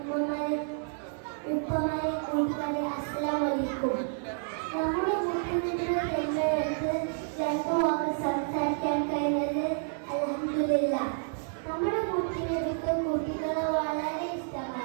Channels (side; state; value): left; silent; 58 dB below the other